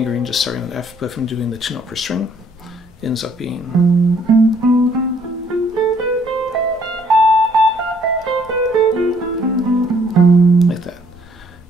just starting on F, but if I'm doing the 2-note per string, it ends up being like that.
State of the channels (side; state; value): both; normal; correlation 0.64